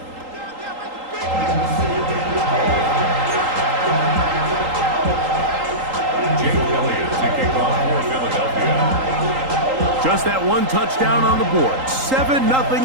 Jake Elliott to kick off for Philadelphia. Just that one touchdown on the board.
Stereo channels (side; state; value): left; late; 3.8 ms